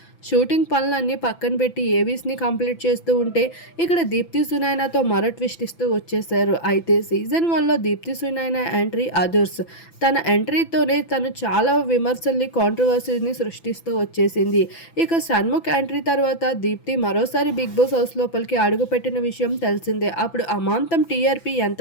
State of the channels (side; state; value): right; late; 6.0 ms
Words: షూటింగ్ పనులన్నీ పక్కన పెట్టి ఏవీస్‌ని కంప్లీట్ చేస్తూ ఉంటే, ఇక్కడ దీప్తి సునైనాతో మరో ట్విస్ట్ ఇస్తూ వచ్చేసారు. అయితే సీజన్ 1లో దీప్తి సునైనా ఎంట్రీ అదుర్స్. తన ఎంట్రీతోనే తను చాలా విమర్శల్ని, కాంట్రవర్సీని సృష్టిస్తూ వచ్చేసింది. ఇక షణ్ముఖ్ ఎంట్రీ తర్వాత దీప్తి మరోసారి బిగ్ బాస్ హౌస్ లోపలికి అడుగుపెట్టిన విషయం తెలిసిందే. అప్పుడు అమాంతం టీఆర్పీ